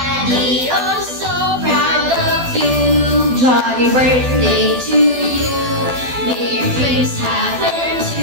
oh so proud of you. Johnny birthday to you, may your dreams happen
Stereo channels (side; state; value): left; late; 12 ms